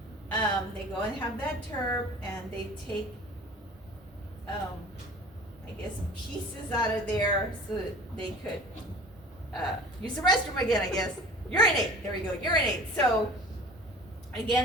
they go and have that TURP and they take, I guess, pieces out of there so that they could use the restroom again, I guess. Urinate, there we go, urinate. So,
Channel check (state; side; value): normal; both; correlation 0.43